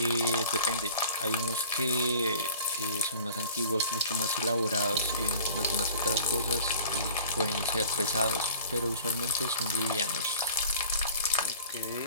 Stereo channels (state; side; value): inverted; both; correlation -0.47